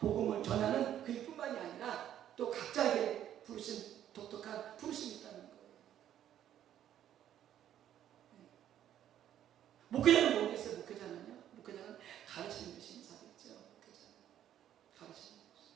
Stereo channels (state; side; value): quieter; left; 11.0 dB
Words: 전하는 그 일뿐만이 아니라 또 각자에게 부르신 독특한 부르심이 있다는 거예요. 목회자는 뭐겠어요? 목회자는요? 목회자는 가르치는 것이 인사겠죠. 목회자는 가르치는 것이.